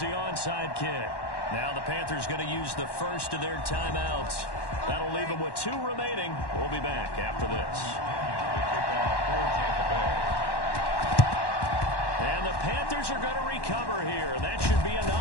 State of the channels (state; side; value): late; right; 1.1 ms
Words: onside kick. Now the Panthers going to use the first of their timeouts. That'll leave them with 2 remaining. We'll be back after this. And the Panthers are going to recover here, and that should be